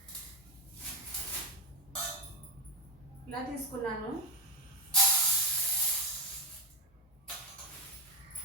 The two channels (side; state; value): both; normal; correlation 0.09